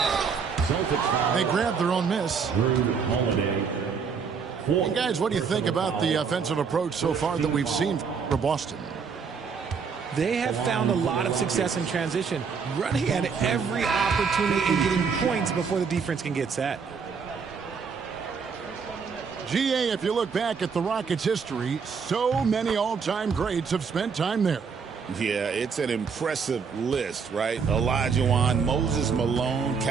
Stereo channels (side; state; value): left; quieter; 5.9 dB